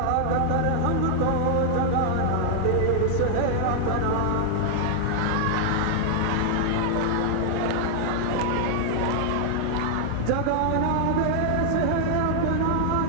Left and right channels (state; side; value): different; both; correlation -0.01